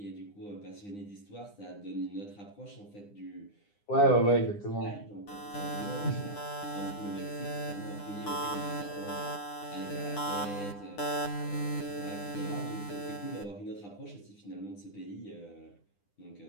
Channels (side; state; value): right; late; 9.8 ms